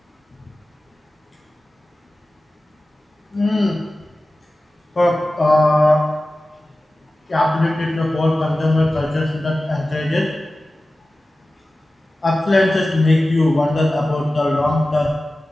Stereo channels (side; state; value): both; normal; correlation 0.96